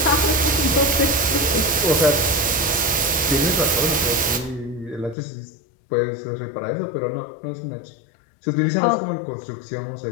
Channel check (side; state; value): right; drops out; at 5.2 s